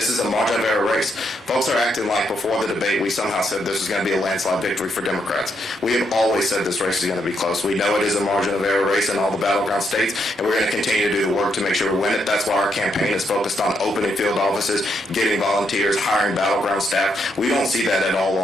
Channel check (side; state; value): both; normal; correlation 0.77